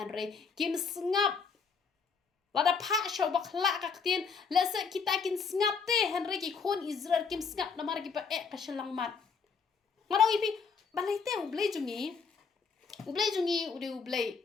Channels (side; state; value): right; quieter; 5.6 dB